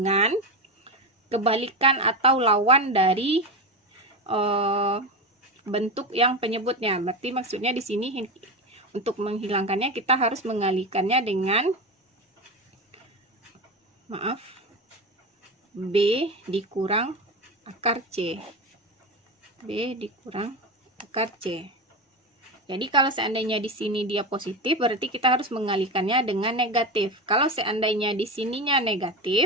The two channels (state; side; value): normal; both; correlation 0.19